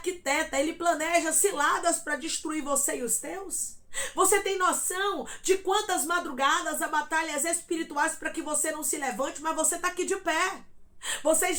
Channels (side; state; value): both; identical; correlation 1.00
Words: ele planeja ciladas para destruir você e os teus? Você tem noção de quantas madrugadas há batalhas espirituais para que você não se levante, mas você está aqui de pé. Você